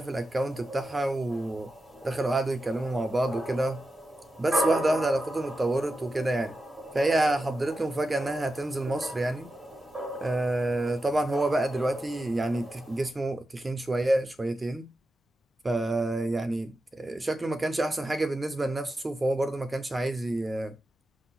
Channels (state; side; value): normal; both; correlation 0.91